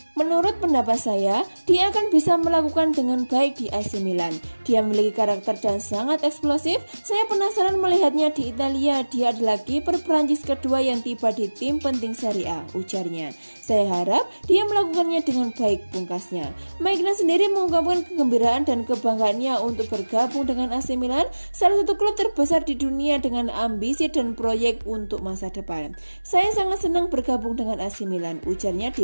menurut pendapat saya, dia akan bisa melakukan dengan baik di AC Milan. Dia memiliki karakter dan sangat eksplosif. Saya penasaran melihatnya di Italia. Dia adalah kiper Prancis kedua yang tiba di tim penting Serie A, ujarnya. Saya harap dia melakukannya dengan baik, pungkasnya. Maignan sendiri mengungkapkan kegembiraan dan kebanggaannya untuk bergabung dengan AC Milan, salah satu klub terbesar di dunia dengan ambisi dan proyek untuk masa depan. Saya sangat senang bergabung dengan AC Milan, ujarnya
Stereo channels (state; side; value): inverted; both; correlation -1.00